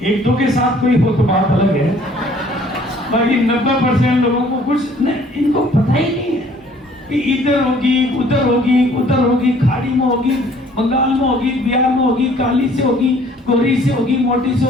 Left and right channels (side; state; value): both; normal; correlation 0.57